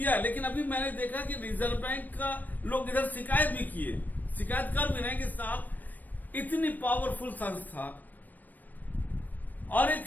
है, लेकिन अभी मैंने देखा कि रिजर्व बैंक का लोग इधर शिकायत भी किए, शिकायत कर भी रहे हैं कि साहब इतनी पावरफुल संस्था और एक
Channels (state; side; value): late; right; 0.086 ms